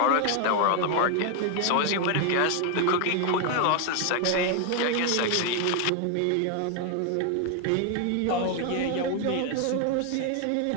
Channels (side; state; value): both; different; correlation 0.01